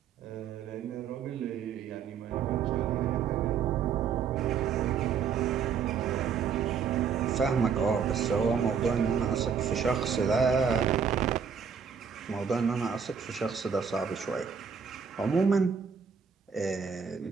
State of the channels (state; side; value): quieter; left; 6.7 dB